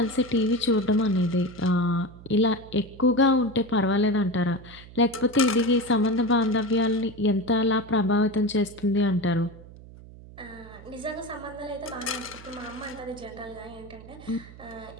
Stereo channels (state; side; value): noise; right; hum, 18 dB below the sound